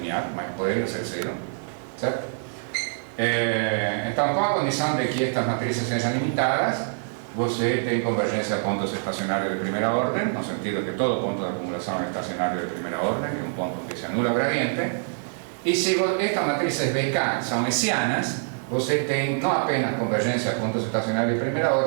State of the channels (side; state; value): left; silent; digital silence